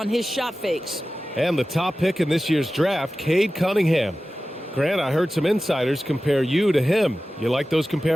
his shot fakes. And the top pick in this year's draft, Cade Cunningham. Grant, I heard some insiders compare you to him. You like those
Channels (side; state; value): both; normal; correlation 0.95